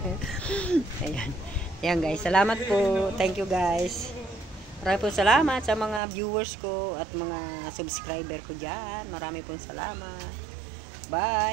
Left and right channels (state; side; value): drops out; left; at 6.0 s